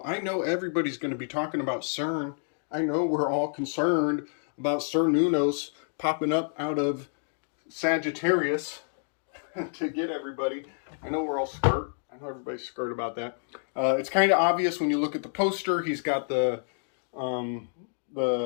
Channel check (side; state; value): right; silent; digital silence